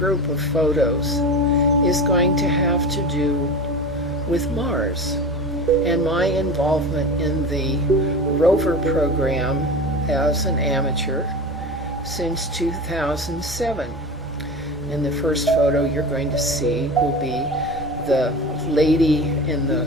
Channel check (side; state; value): both; normal; correlation 0.31